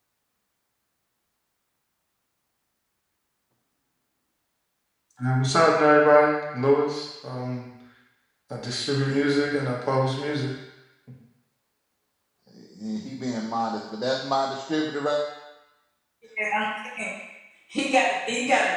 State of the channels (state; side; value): identical; both; correlation 1.00